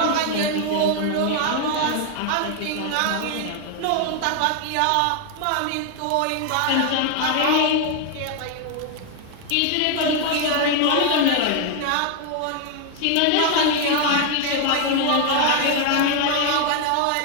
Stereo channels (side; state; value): both; different; correlation 0.00